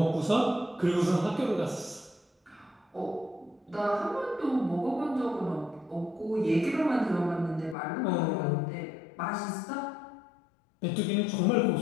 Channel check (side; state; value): right; drops out; at 7.8 s